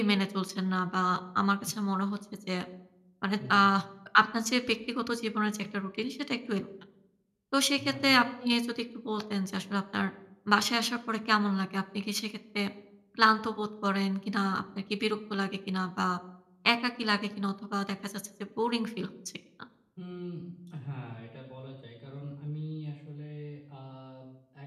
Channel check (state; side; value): identical; both; correlation 1.00